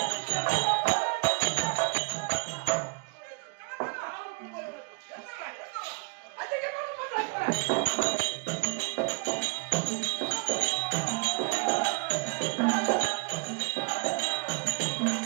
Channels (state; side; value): quieter; left; 32.3 dB